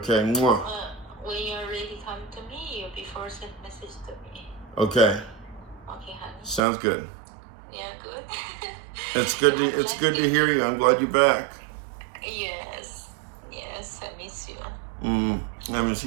Mwah. When you're ready, come to me. You before send message to me. Okay. Okay, honey. Sounds good. Yeah, good. It's good to hear you. I'm glad you're back. Yes, I miss you. I miss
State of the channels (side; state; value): left; drops out; at 6.6 s